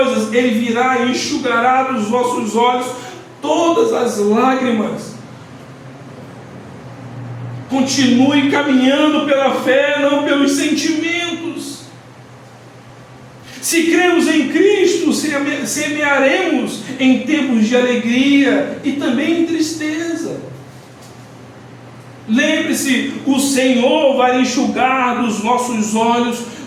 Ele virá e enxugará dos vossos olhos todas as lágrimas. Continue caminhando pela fé, não pelos sentimentos. Se cremos em Cristo, semearemos em tempos de alegria e também em tristeza. Lembre-se, o Senhor vai enxugar dos nossos olhos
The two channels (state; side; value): identical; both; correlation 1.00